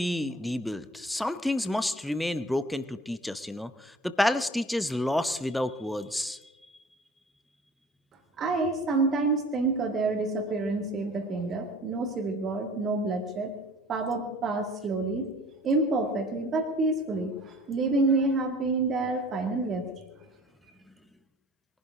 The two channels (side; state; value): both; normal; correlation 0.47